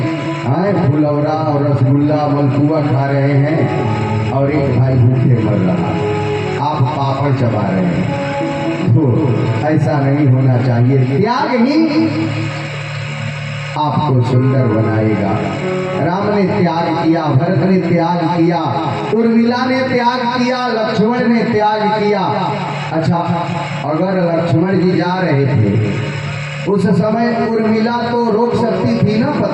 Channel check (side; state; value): both; identical; correlation 1.00